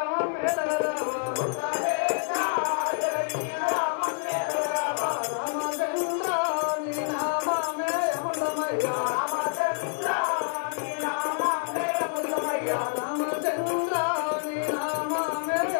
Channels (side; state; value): right; silent; digital silence